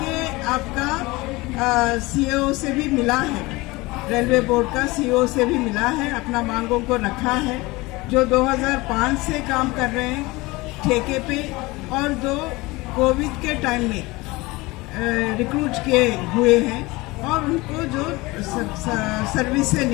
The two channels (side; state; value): right; quieter; 22.2 dB